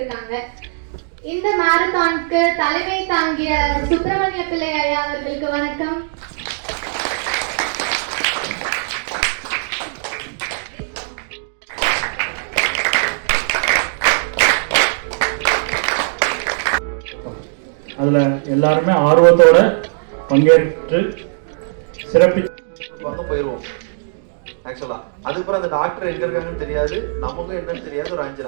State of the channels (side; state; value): left; silent; digital silence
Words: இந்த மேரத்தானுக்கு தலைமை தாங்கிய சுப்பிரமணிய பிள்ளை ஐயா அவர்களுக்கு வணக்கம். அதுல எல்லாருமே ஆர்வத்தோட பங்கேற்று சிறப்பிச்சு போயிடுவோம். ஆக்சுவலா அதுக்கப்புறம் அந்த டாக்டர் எங்க இருக்காங்கன்னு தெரியாது, நமக்கும் என்னன்னு தெரியாது. ஒரு 5